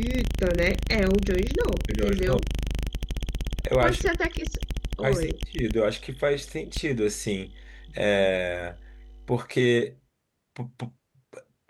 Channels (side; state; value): both; identical; correlation 1.00